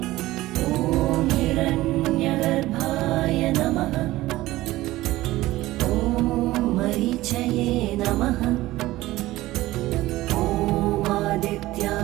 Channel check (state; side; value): quieter; left; 17.2 dB